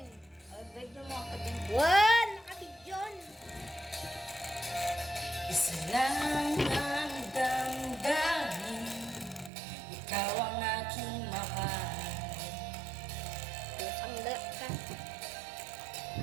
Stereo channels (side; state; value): left; drops out; at 9.5 s